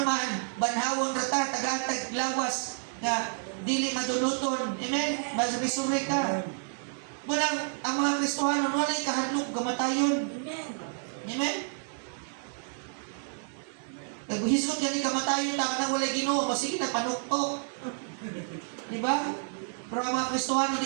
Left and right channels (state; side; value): silent; left; digital silence